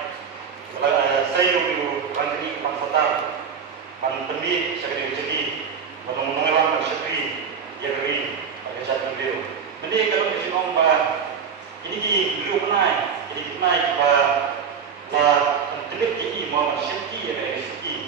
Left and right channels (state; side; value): quieter; left; 6.6 dB